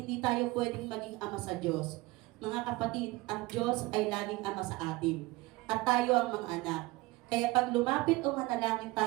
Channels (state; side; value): quieter; left; 21.1 dB